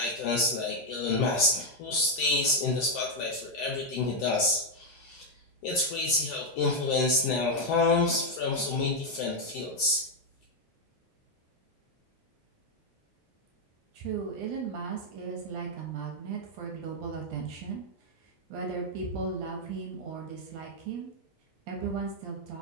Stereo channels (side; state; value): both; normal; correlation 0.02